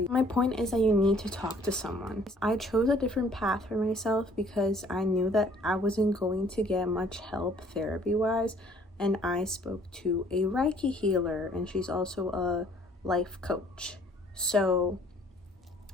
My point is that you need to talk to someone. I chose a different path for myself because I knew that I wasn't going to get much help therapy-wise, and I spoke to a Reiki healer, and she's also a life coach. So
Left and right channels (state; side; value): normal; both; correlation 0.58